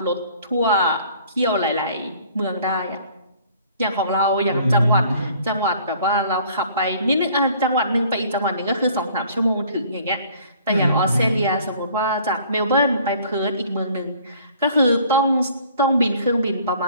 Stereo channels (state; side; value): inverted; both; correlation -0.55